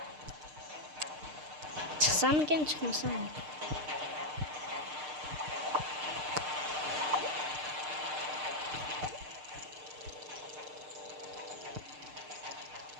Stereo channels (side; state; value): left; late; 6.6 ms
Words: Çıksam miken, çıkmasam mı?